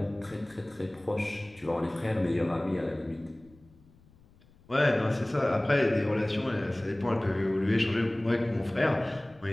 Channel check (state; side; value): noise; left; rumble, 28 dB below the sound